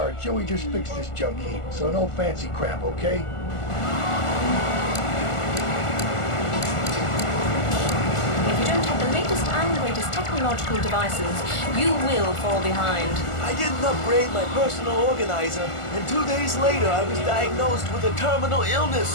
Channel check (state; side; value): late; right; 1.4 ms